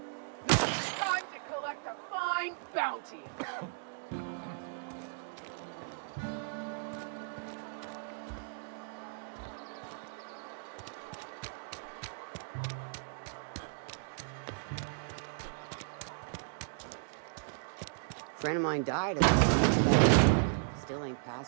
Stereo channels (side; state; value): left; silent; digital silence